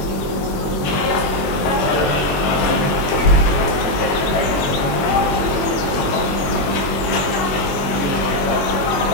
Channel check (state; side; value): late; right; 21 ms